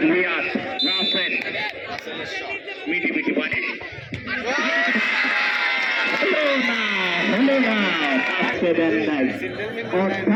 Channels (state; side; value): identical; both; correlation 1.00